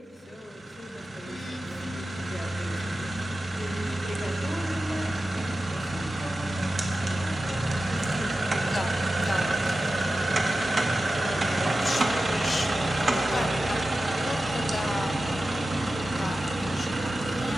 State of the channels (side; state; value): both; normal; correlation 0.93